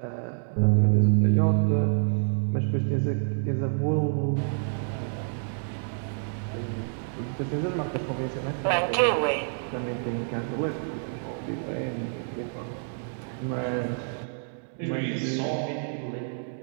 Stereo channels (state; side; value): silent; left; 59 dB below the other